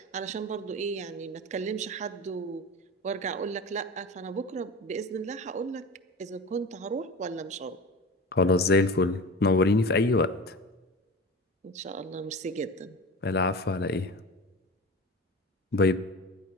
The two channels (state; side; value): normal; both; correlation 0.31